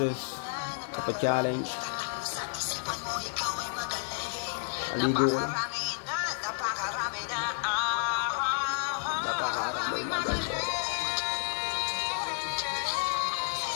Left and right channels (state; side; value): silent; right; digital silence